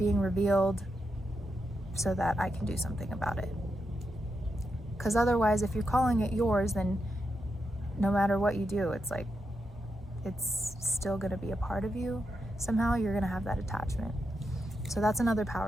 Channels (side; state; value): both; normal; correlation 0.85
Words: revealed so that I can do something about it. Because otherwise, if you're calling it yours, then no matter what you do, it's like, it's still going to be a part of you. Somehow you're going to have that attachment. So that's another